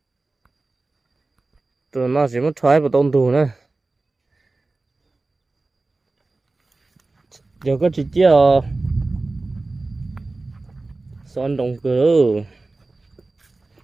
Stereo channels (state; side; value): quieter; left; 3.3 dB